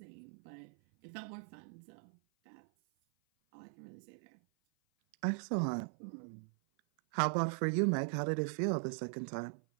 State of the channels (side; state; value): left; silent; 51 dB below the other